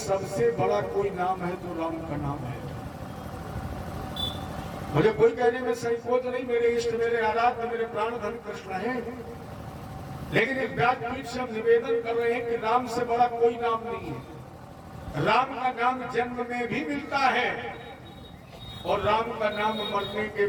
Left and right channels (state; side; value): identical; both; correlation 1.00